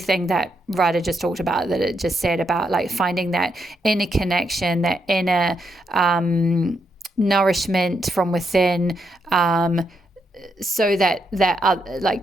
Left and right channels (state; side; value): normal; both; correlation 0.80